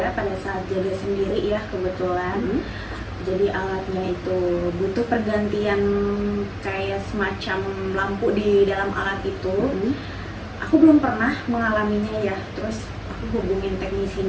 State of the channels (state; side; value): identical; both; correlation 1.00